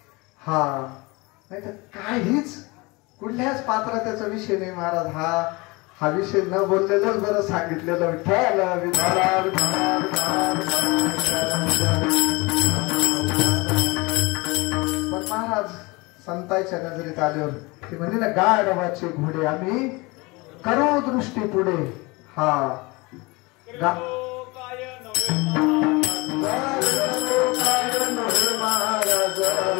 हा नाही तर काहीच कुठल्याच पात्रतेचा विषय नाही महाराज. हा विषय न बोललेलंच बरं सांगितलेलं. विठ्ठल विठ्ठल. पण महाराज संतांच्या नजरेत आल्यावर ते म्हणजे ना, गाढवाचे घोडे आम्ही करू दृष्टी पुढे. हा गा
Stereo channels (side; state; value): right; quieter; 25.0 dB